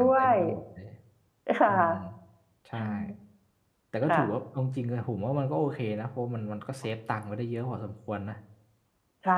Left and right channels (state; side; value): identical; both; correlation 1.00